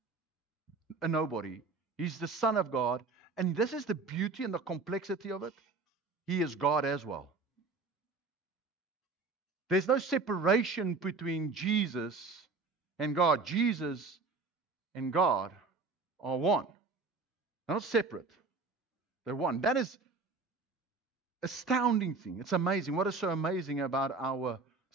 a nobody. He's the Son of God. And this is the beauty and the complexity of it. He is God as well. There's no separation between Jesus and God. Jesus and God are one. They're not separate. They're one. That is astounding thing. It's amazing. What is so amazing about our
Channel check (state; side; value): quieter; left; 4.0 dB